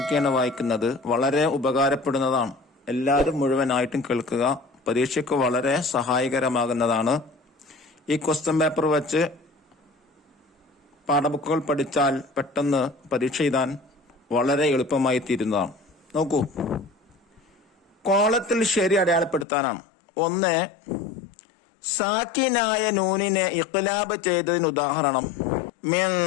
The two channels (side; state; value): right; drops out; at 19.5 s